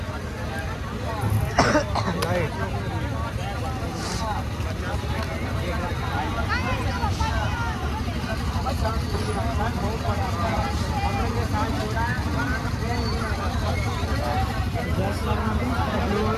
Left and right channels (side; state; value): both; identical; correlation 1.00